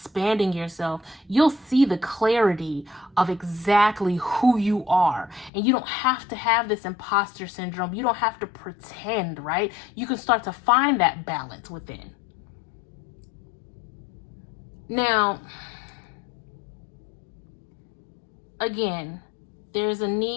yourself, you'll see the clarity of exactly who you are. And you don't have to have this imposter syndrome. You don't have to pretend, right? You can start to find that balance within. Now, again, there's a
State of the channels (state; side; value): drops out; right; at 5.5 s